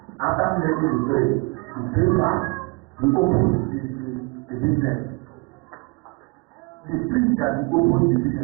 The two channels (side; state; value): left; quieter; 28.8 dB